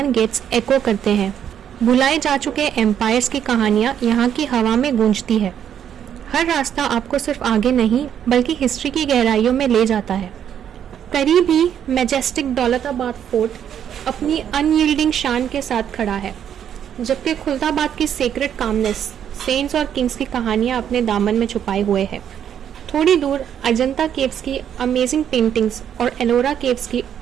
गेट्स एको करते हैं। भुलाए जा चुके एम्पायर्स की कहानियाँ यहाँ की हवा में गूंजती है। हर रास्ता आपको सिर्फ आगे नहीं बल्कि हिस्ट्री की गहराइयों में ले जाता है। करीब ही मैजेस्टिक दौलताबाद फोर्ट अपनी अनयील्डिंग शान के साथ खड़ा है, जबकि खुलदाबाद की सेक्रेट कामनेस सेंट्स और किंग्स की कहानियां अपने दामन में छुपाए हुए है। थोड़ी दूर अजंता केव्स की अमेजिंग पेंटिंग्स और एलोरा केव्स की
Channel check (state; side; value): quieter; left; 9.2 dB